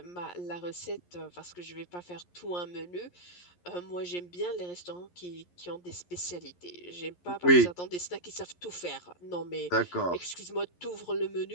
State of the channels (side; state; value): right; late; 11 ms